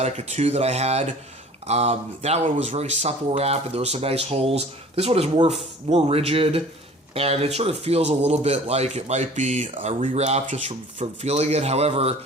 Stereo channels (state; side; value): normal; both; correlation 0.46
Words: 2 that I had. That one was very supple wrap, and there were some nice holes. This one is more rigid, and it sort of feels a little bit like it might be a rewrap just from feeling it. However,